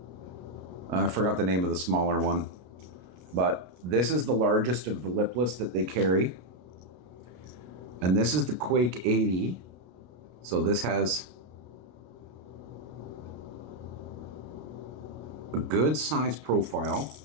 I forgot the name of the smaller one. But this is the largest of the lipless that they carry. And this is the Quake 80. So this has a good size profile.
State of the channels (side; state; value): left; late; 33 ms